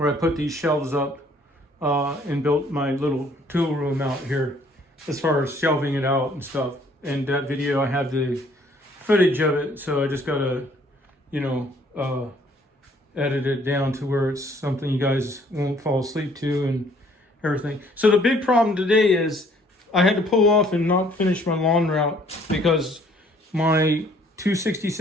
I put these shelves up and built my little tool room out here as far as shelving it out and stuff. And that video, I have the footage of it, so I just got to, edit it down to where it's something you guys won't fall asleep to and everything. So the big problem today is I had to pull off and not finish my lawn route because my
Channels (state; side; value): normal; both; correlation 0.61